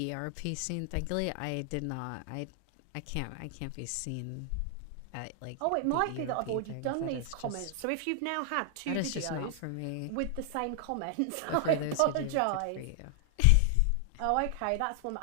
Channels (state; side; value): different; both; correlation 0.00